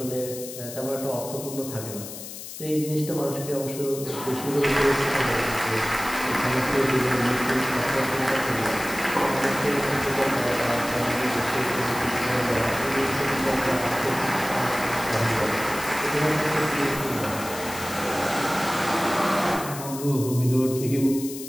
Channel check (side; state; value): left; noise; hiss, 11 dB below the sound